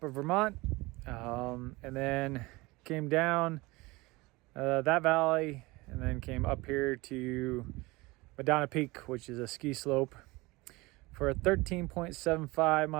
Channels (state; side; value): quieter; left; 22.6 dB